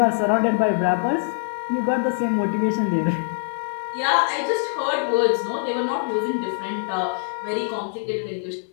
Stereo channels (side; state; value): right; silent; 63 dB below the other